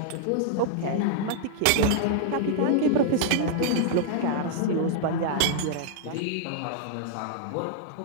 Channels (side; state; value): both; different; correlation -0.01